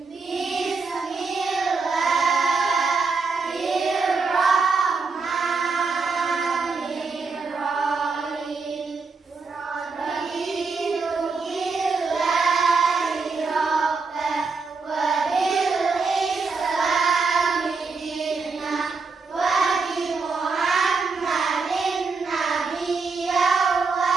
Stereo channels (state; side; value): quieter; left; 4.5 dB